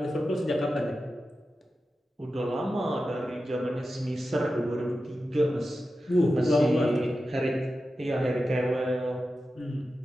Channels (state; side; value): normal; both; correlation 0.92